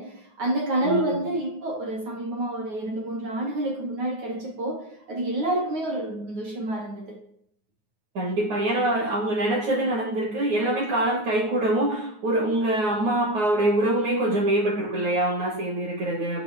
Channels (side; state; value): left; late; 9.4 ms